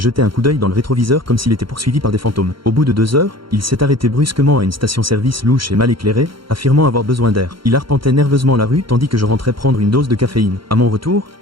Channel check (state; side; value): late; left; 0.73 ms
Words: un coup d'œil dans le rétroviseur comme s'il était poursuivi par des fantômes. Au bout de 2 heures, il s'est arrêté brusquement à une station-service louche et mal éclairée, affirmant avoir besoin d'air. Il arpentait nerveusement la rue tandis que je rentrais prendre une dose de caféine. À mon retour,